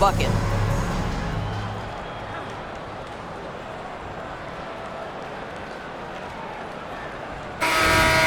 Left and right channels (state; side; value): identical; both; correlation 1.00